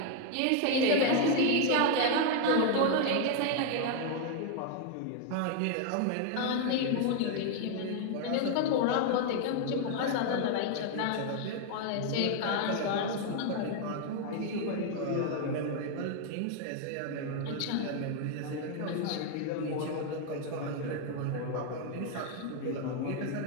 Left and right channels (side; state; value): both; different; correlation 0.00